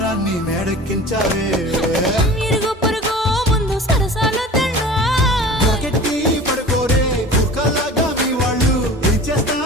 మేడెక్కించావే ఇరుగు పొరుగు ముందు సరసాలు కెట్టి పడుకోరే కుక్కలాగా మీ వాళ్ళు ఏం చేస్తాం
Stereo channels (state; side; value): normal; both; correlation 0.40